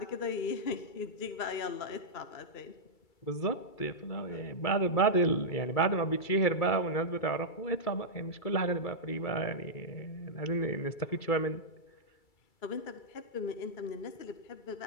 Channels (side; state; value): right; late; 2.3 ms